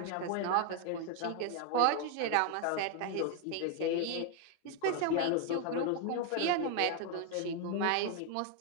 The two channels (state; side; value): different; both; correlation 0.00